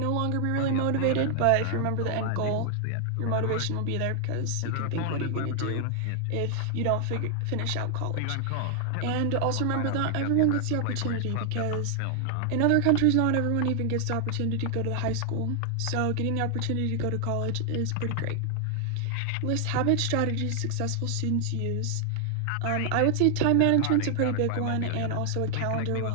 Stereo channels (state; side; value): different; both; correlation 0.00